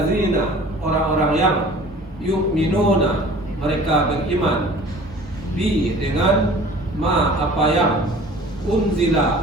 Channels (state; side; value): normal; both; correlation 0.46